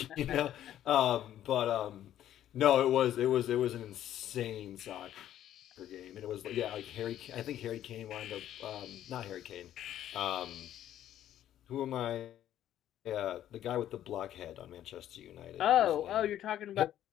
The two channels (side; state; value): right; quieter; 11.7 dB